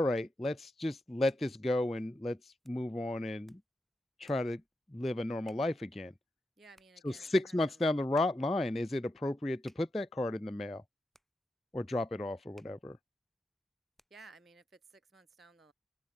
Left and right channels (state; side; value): normal; both; correlation 0.87